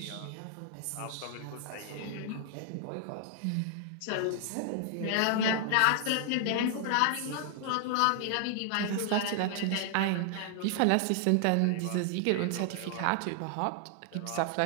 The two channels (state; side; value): different; both; correlation 0.00